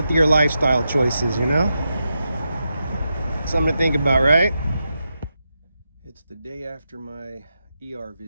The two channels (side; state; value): both; inverted; correlation -0.87